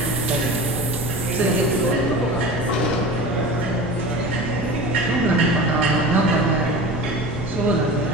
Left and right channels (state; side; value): noise; right; hum, 19 dB below the sound